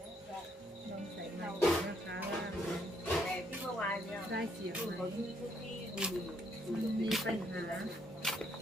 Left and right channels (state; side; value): normal; both; correlation 0.71